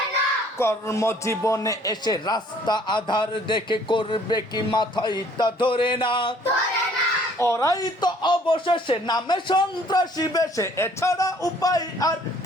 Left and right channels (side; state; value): both; normal; correlation 0.58